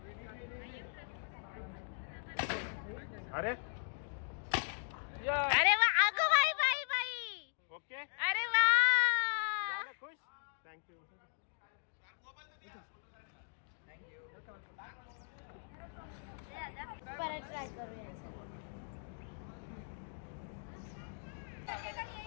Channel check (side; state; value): right; silent; digital silence